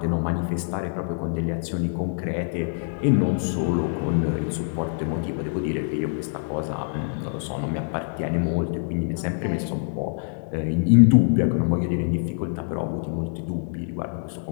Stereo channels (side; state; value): right; silent; 62 dB below the other